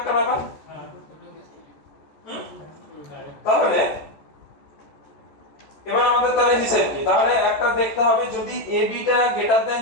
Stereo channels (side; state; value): right; late; 14 ms